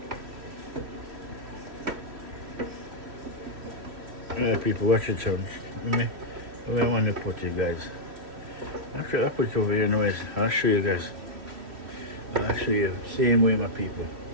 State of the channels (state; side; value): late; left; 3.1 ms